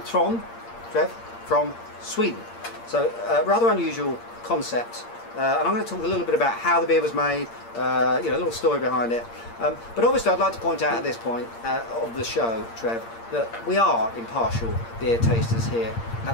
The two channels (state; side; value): late; right; 8.7 ms